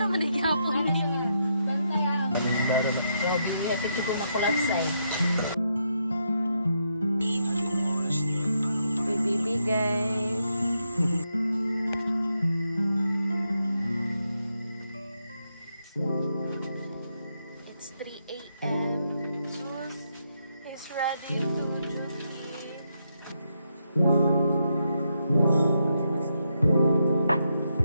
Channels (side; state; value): both; inverted; correlation -0.80